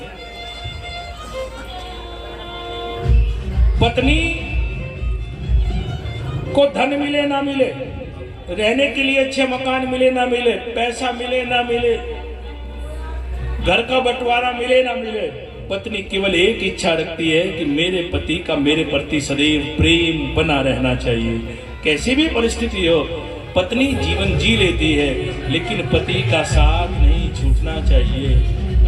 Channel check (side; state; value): both; identical; correlation 1.00